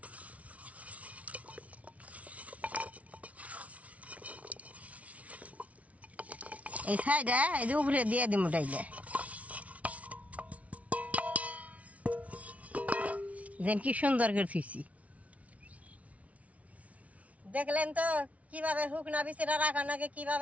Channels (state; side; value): late; left; 0.067 ms